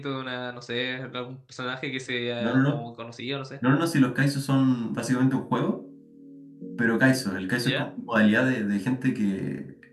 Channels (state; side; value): identical; both; correlation 1.00